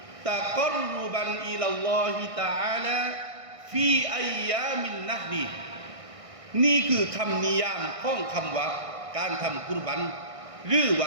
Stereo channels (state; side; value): late; left; 1.6 ms